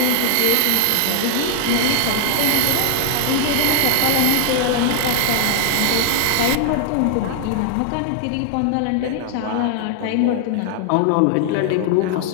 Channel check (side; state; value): both; different; correlation 0.00